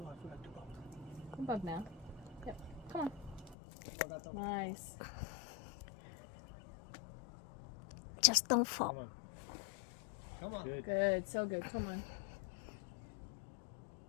Come up now. Yep. Come on. Nice. Just don't fall. Come on. Good. Good. So good. Come on.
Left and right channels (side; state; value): right; drops out; at 3.6 s